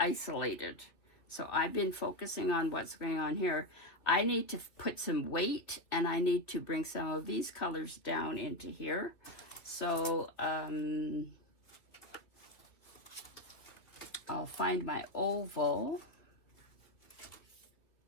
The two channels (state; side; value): late; right; 2.6 ms